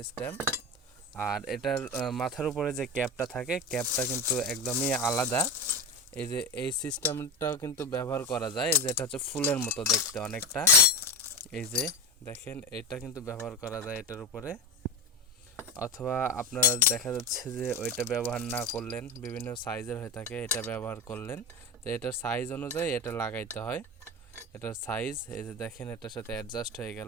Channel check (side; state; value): both; normal; correlation 0.22